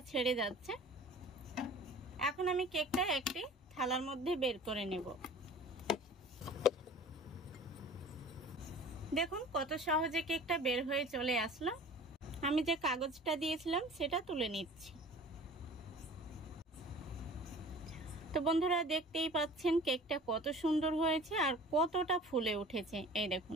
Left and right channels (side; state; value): both; normal; correlation 0.44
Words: ছেড়ে যাচ্ছে। এখন আমি কেকটা একটি থালার মধ্যে বের করে নেব। দেখুন কত সহজে কেকটা বের হয়ে চলে আসলো। আমি যে কাগজটা দিয়েছিলাম সেটা তুলে নিচ্ছি। তো বন্ধুরা দেখতেই পাচ্ছেন কেকটা কত সুন্দর হয়েছে আর কতটা ফুলে উঠেছে। এই